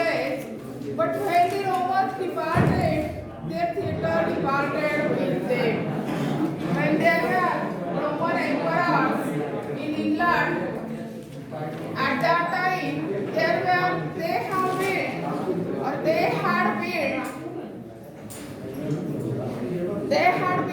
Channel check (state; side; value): identical; both; correlation 1.00